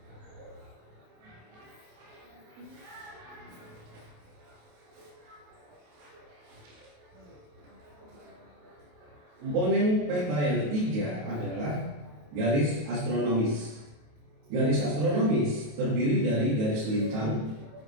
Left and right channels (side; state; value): left; late; 28 ms